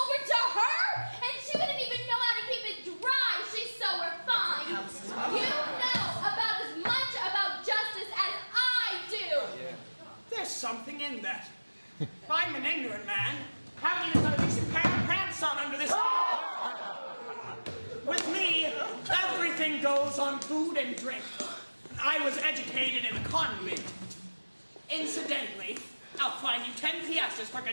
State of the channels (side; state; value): both; inverted; correlation -1.00